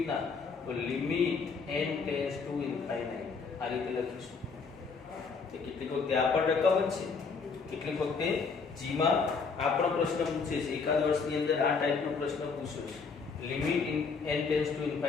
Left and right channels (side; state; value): right; quieter; 5.0 dB